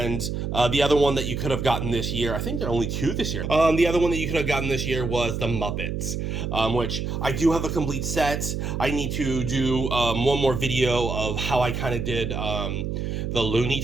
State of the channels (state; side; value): noise; right; hum, 3 dB below the sound